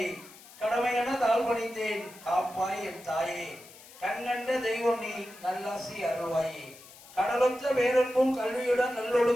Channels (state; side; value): noise; left; hiss, 20 dB below the sound